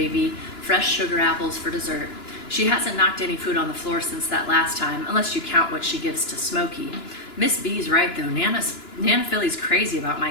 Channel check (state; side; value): late; right; 2.9 ms